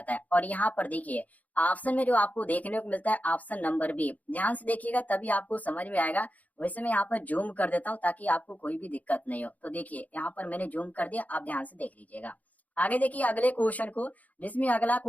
है। और यहाँ पर देखिए ऑप्शन में जो आपको देखने को मिलता है ऑप्शन नंबर बी, ध्यान से देखिएगा तभी आपको समझ में आएगा। वैसे मैं यहाँ पर जूम कर देता हूँ ताकि आपको कोई भी दिक्कत नहीं हो। तो देखिए यहाँ पर मैंने जूम कर दिया, आप ध्यान से देख लीजिएगा। आगे देखिए अगले क्वेश्चन को, जिसमें अगला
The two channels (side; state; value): right; late; 0.075 ms